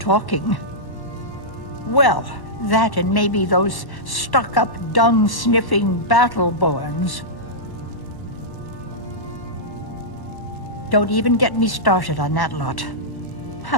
Well, that and maybe those stuck-up, dung-sniffing Battleborns. Don't even get me started on that lot.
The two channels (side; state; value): right; late; 1.1 ms